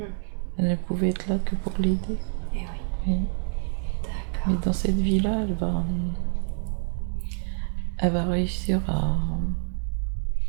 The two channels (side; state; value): left; silent; digital silence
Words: Elle ne pouvait être là que pour l'aider. Et oui. Oui. D'accord. Mais dans cette vie-là, elle va réussir à